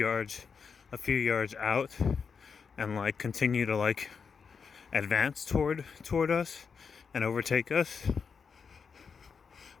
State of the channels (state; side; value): quieter; right; 5.9 dB